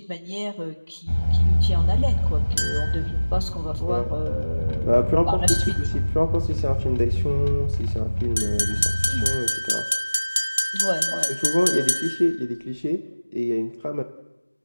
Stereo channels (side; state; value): both; inverted; correlation -1.00